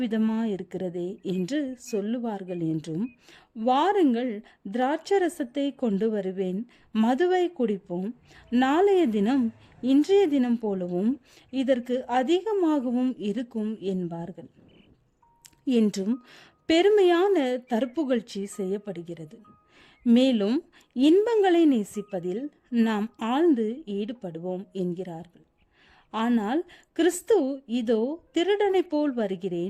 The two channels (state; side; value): identical; both; correlation 1.00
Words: விதமாயிருக்கிறதே என்று சொல்லுவார்கள் என்றும், வாருங்கள், திராட்சரசத்தை கொண்டு வருவேன், மதுவை குடிப்போம், நாளைய தினம் இன்றைய தினம் போலவும் இதற்கு அதிகமாகவும் இருக்கும் என்பார்கள் என்றும் பெருமையான தற்புகழ்ச்சி செய்யப்படுகிறது. மேலும் இன்பங்களை நேசிப்பதில் நாம் ஆழ்ந்து ஈடுபடுவோம் என்கிறார்கள். ஆனால் கிறிஸ்து இதோ திருடனை போல்